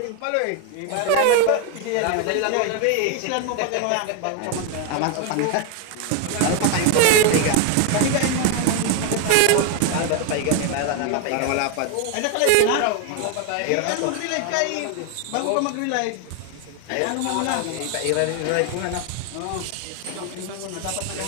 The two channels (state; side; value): different; both; correlation 0.01